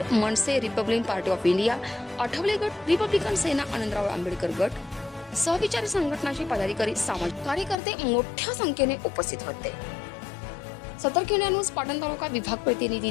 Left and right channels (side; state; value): right; drops out; at 7.8 s